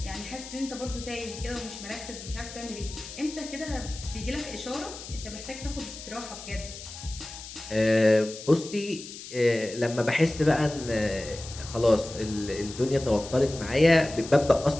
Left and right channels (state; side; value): noise; left; hiss, 13 dB below the sound